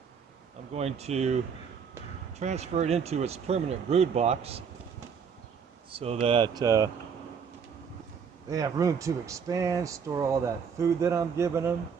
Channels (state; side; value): quieter; left; 6.6 dB